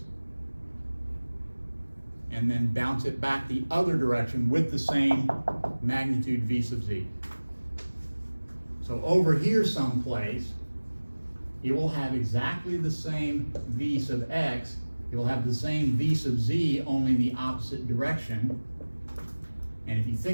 and then bounce it back the other direction with the same magnitude v sub z. So over here someplace, it will have exactly the same v sub x, it will have the same v sub z, only in the opposite direction. And if you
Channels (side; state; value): both; inverted; correlation -1.00